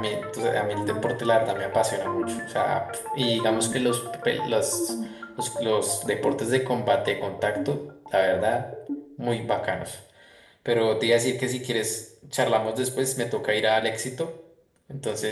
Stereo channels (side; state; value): both; identical; correlation 1.00